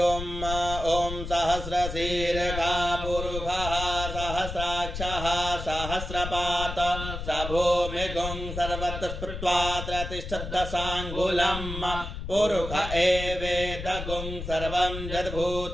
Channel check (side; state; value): left; noise; rumble, 7 dB below the sound